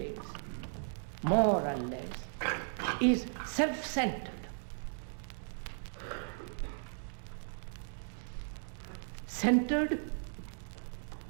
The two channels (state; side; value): silent; left; digital silence